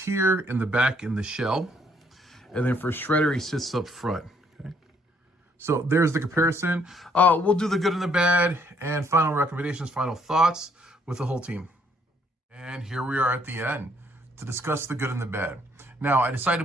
in the back in the shell. And then for Shredder, he sits up front. Okay, so there's the comparison. We'll do the good and the bad and final recommendations, final thoughts with the whole team. And here we are at the end to discuss the good and the bad. Now, I decided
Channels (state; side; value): normal; both; correlation 0.68